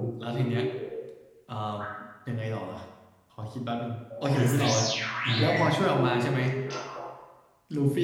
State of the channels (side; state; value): both; identical; correlation 1.00